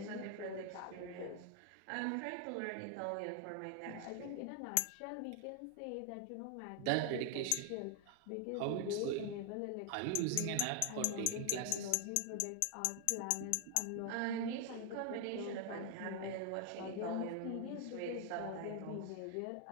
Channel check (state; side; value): different; both; correlation 0.00